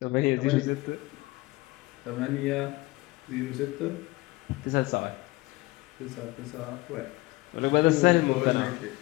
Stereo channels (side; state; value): right; quieter; 21.2 dB